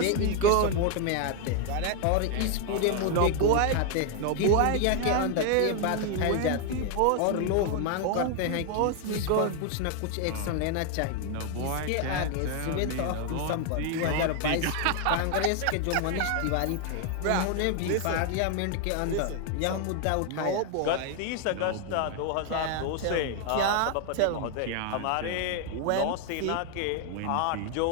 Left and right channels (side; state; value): both; different; correlation 0.00